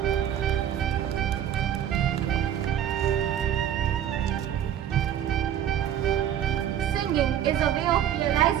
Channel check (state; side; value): quieter; left; 10.3 dB